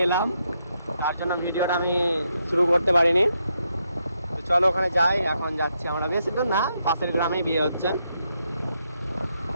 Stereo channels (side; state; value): both; inverted; correlation -0.80